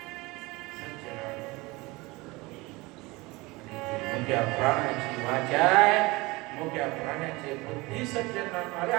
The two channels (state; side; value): quieter; left; 22.9 dB